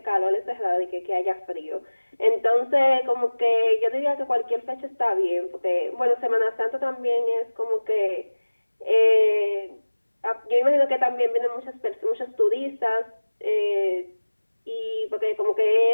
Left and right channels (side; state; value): both; inverted; correlation -1.00